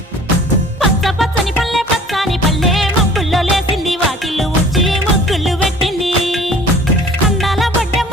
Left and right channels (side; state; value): both; normal; correlation 0.49